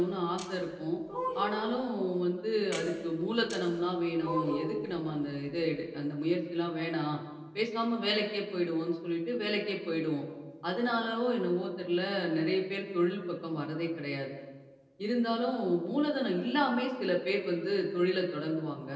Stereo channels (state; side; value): identical; both; correlation 1.00